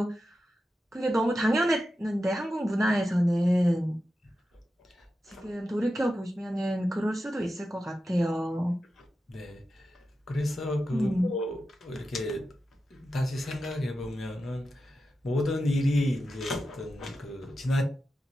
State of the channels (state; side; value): normal; both; correlation 0.91